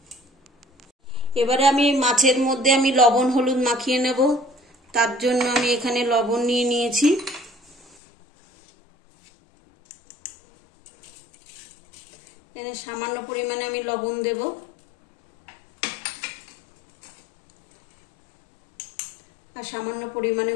এবারে আমি মাছের মধ্যে আমি লবণ হলুদ মাখিয়ে নেব। তার জন্য আমি এখানে লবণ নিয়ে নিয়েছি। এখানে সামান্য পরিমাণে আমি লবণ দেব। আর সামান্য পরিমাণে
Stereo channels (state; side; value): drops out; right; at 8.0 s